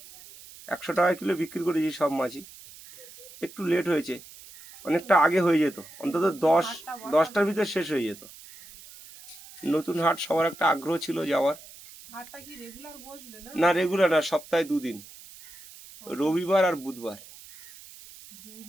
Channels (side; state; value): right; noise; hiss, 19 dB below the sound